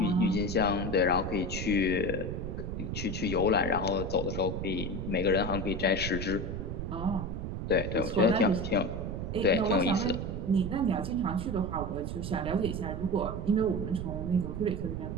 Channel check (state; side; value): noise; right; rumble, 4 dB below the sound